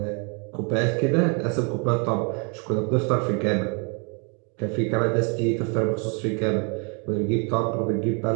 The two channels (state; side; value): quieter; left; 35.6 dB